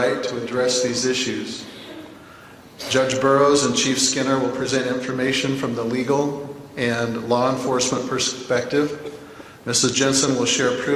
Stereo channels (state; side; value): identical; both; correlation 1.00